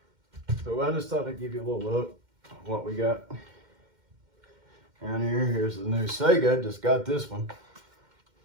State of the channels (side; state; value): left; late; 2.1 ms